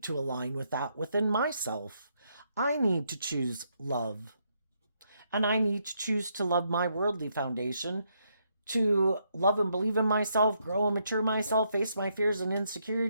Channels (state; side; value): inverted; both; correlation -0.76